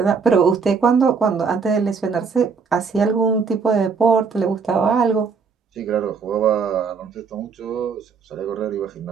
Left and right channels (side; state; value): left; quieter; 5.5 dB